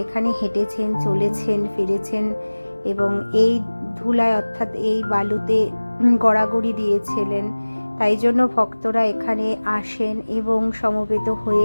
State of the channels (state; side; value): inverted; both; correlation -1.00